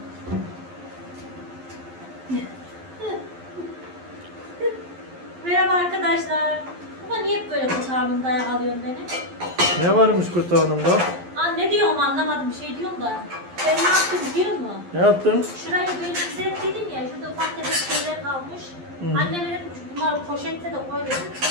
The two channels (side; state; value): left; late; 11 ms